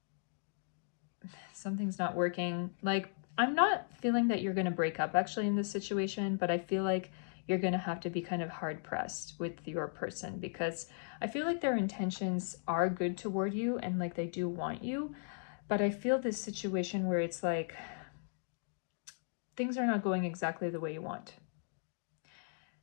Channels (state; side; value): silent; right; digital silence